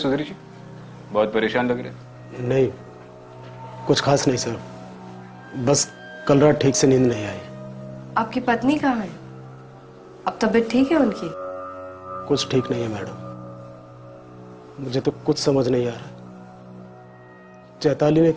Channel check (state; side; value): identical; both; correlation 1.00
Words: जी, बहुत परेशान लग रहे। नहीं, कुछ खास नहीं सर, बस कल रात ठीक से नींद नहीं आई। आपकी पत्नी कहाँ है? अब तबीयत ठीक है उनकी? कुछ ठीक नहीं है मैडम। मुझे तो कुछ समझ नहीं आ रहा। चैताली ने